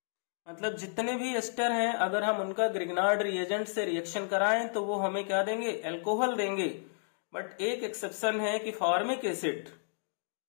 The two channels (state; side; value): silent; right; digital silence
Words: मतलब जितने भी एस्टर हैं अगर हम उनका ग्रिग्नार्ड रिएजेंट से रिएक्शन कराएं तो वो हमें क्या देंगे, अल्कोहल देंगे। बट एक एक्सेप्शन है कि फॉर्मिक एसिड